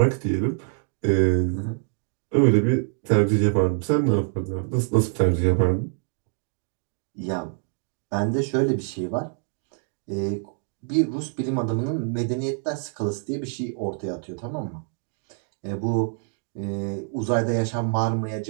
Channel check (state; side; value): silent; left; 57 dB below the other